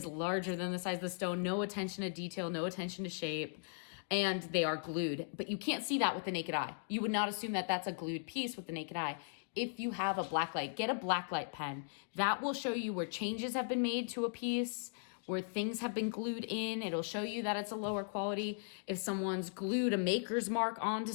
larger than the size of the stone. No attention to detail, no attention to shape, and they are glued. But you can't see that with the naked eye. You would not assume that that's a glued piece with the naked eye. If you have a blacklight, get a blacklight pen. That will show you where changes have been made to a piece where things have been glued in. It'll show you that it's a lower quality. If someone's glued a maker's mark onto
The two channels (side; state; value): right; silent; digital silence